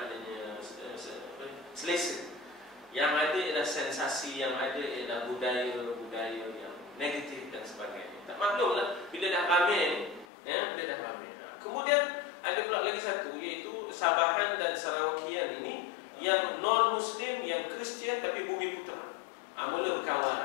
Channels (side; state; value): right; drops out; at 10.2 s